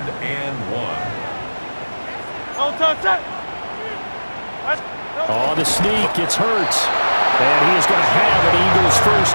and 1. On the sneak, it's Hurts. And he is going to have an Eagles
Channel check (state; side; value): inverted; both; correlation -1.00